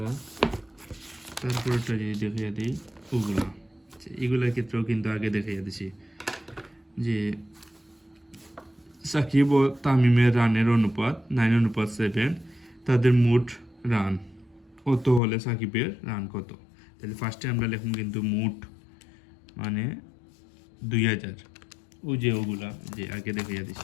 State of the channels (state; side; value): drops out; right; at 15.2 s